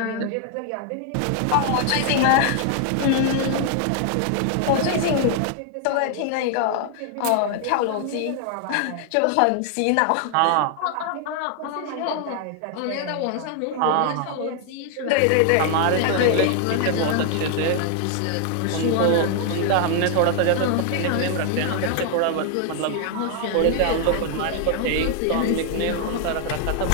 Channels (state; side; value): different; both; correlation 0.00